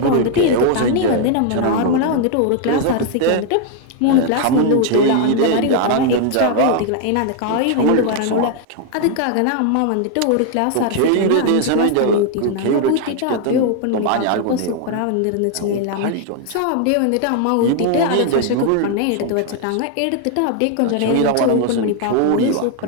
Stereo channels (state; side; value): different; both; correlation 0.00